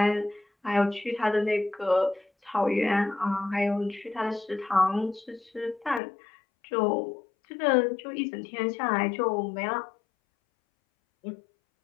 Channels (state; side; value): drops out; right; at 6.0 s